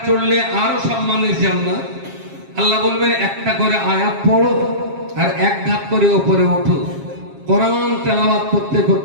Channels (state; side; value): late; left; 7.4 ms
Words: চড়লে আরো সম্মানের জান্নাত। আল্লাহ বলবেন একটা করে আয়াত পড়ো আর এক ধাপ করে ওপরে ওঠো। কোরআন তেলাওয়াত করতে